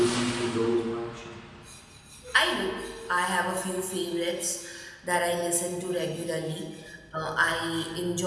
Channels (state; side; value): identical; both; correlation 1.00